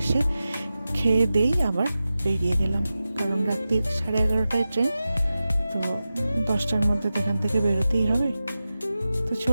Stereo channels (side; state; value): both; inverted; correlation -0.93